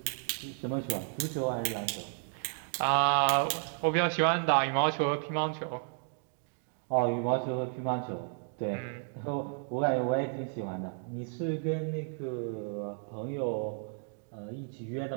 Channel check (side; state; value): left; silent; 56 dB below the other